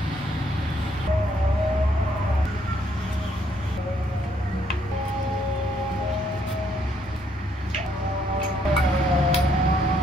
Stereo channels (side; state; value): both; normal; correlation 0.70